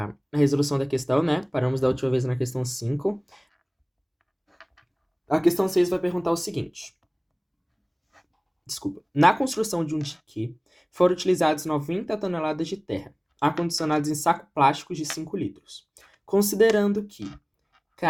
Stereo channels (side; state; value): both; identical; correlation 1.00